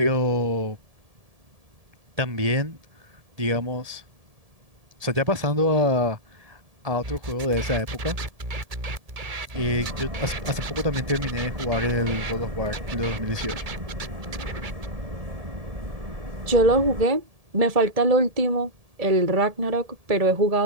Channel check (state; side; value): late; left; 1.7 ms